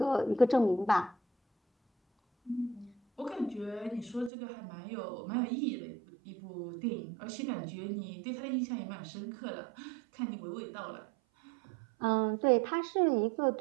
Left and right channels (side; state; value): left; drops out; at 4.3 s